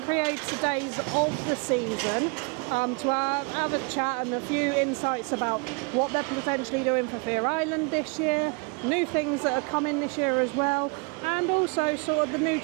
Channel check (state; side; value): quieter; left; 32.8 dB